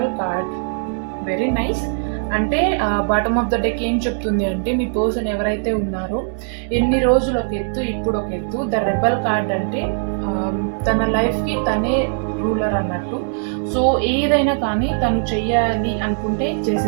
card, very nice. అంటే బాటమ్ ఆఫ్ ద డెక్ ఏం చెప్తుంది అంటే, మీ పర్సన్ ఎవరైతే ఉన్నారో ఎన్ని రోజులు ఒక ఎత్తు, ఇప్పుడు ఒక ఎత్తు. ద రెబల్ కార్డ్ అంటే తన లైఫ్కి తనే రూలర్ అన్నట్టు. సో ఏదైనా కానీ తను చెయ్యాలి అనుకుంటే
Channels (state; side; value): silent; left; digital silence